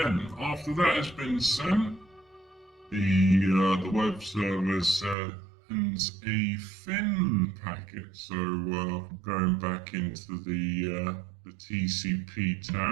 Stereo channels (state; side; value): drops out; left; at 5.2 s